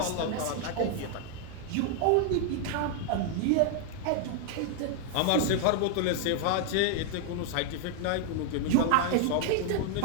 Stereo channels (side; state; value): both; different; correlation 0.00